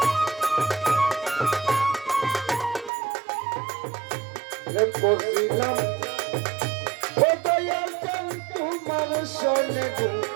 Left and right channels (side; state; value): left; drops out; at 2.9 s